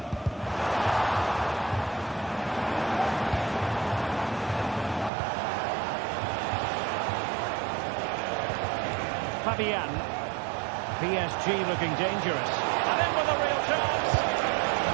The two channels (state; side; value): drops out; left; at 5.1 s